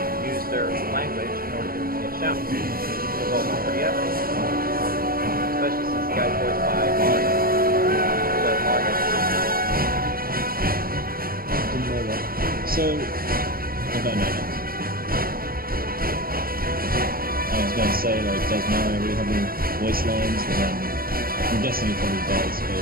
use their language in order to get shouts. It was also pretty epic, especially since the guy's voiced by Mario. So Mario. Didn't know that. So, I don't know. I was going to say, does Mario really have any voice lines? But then, I'm guessing he probably does,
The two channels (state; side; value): late; left; 0.43 ms